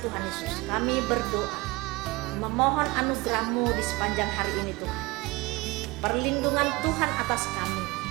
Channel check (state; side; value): quieter; left; 23.3 dB